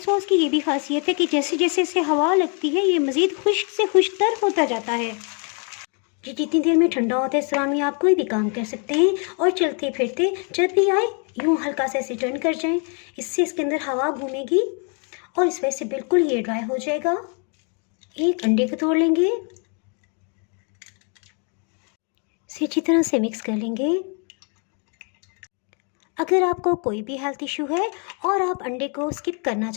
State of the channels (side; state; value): right; quieter; 38.1 dB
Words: की ये भी खासियत है कि जैसे जैसे इसे हवा लगती है ये मज़ीद खुश्क से खुश्तर होता जाता है। जी जितनी देर में ठंडा होता है इस दौरान में आप कोई भी काम कर सकते हैं और चलते फिरते जब भी आए यूँ हल्का सा इसे टर्न कर जाएं। इससे इसके अंदर हवा घूमेगी और इस वजह से बिल्कुल ये ड्राई हो जाएगा। एक अंडे को तोड़ लेंगे, इसे अच्छी तरह से मिक्स कर लेंगे। अगर आपको कोई भी हेल्थ इशू है और आप अंडे को स्किप करना